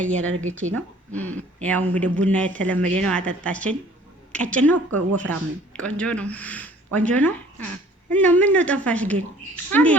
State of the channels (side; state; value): both; normal; correlation 0.53